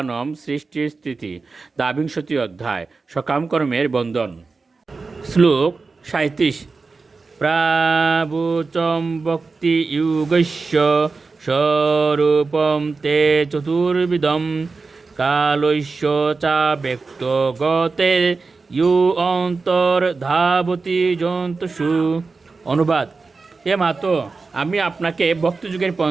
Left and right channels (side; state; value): left; quieter; 4.2 dB